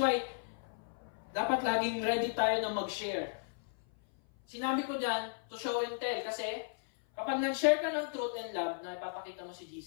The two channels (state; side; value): silent; right; 54 dB below the other